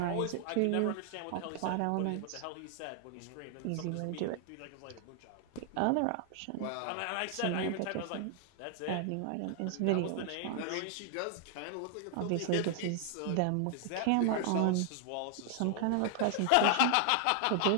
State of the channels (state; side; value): different; both; correlation 0.00